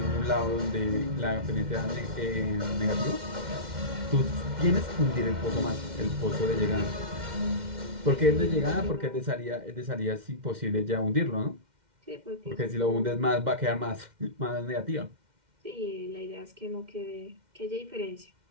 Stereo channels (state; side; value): late; left; 2.1 ms